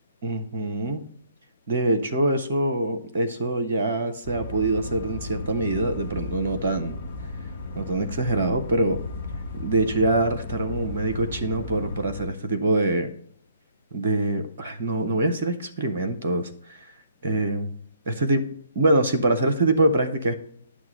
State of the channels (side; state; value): both; inverted; correlation -0.63